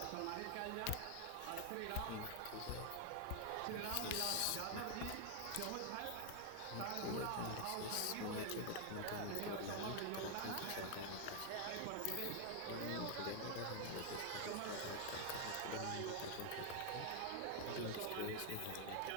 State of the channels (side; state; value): both; different; correlation 0.00